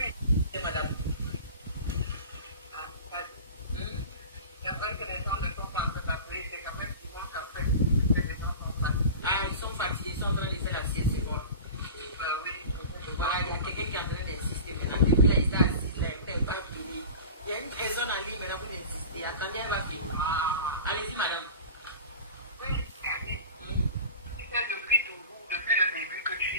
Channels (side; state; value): both; inverted; correlation -0.35